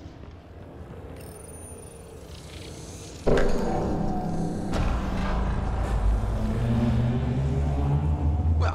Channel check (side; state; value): both; identical; correlation 1.00